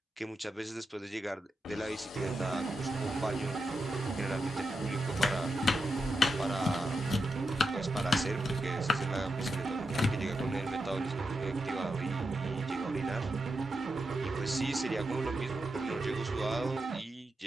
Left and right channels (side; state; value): both; normal; correlation 0.86